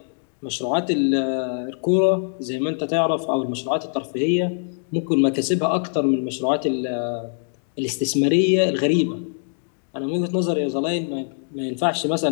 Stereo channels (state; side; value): silent; right; digital silence